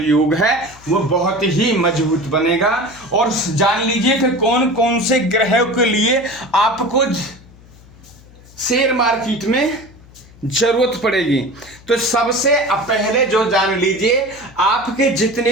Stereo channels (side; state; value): left; noise; hum, 23 dB below the sound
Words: है वो बहुत ही मजबूत बनेगा। और जान लीजिए कि कौन कौन से ग्रहों के लिए आपको शेयर मार्केट में जरूरत पड़ेगी। तो सबसे पहले जो जान लीजिए, आपके जितने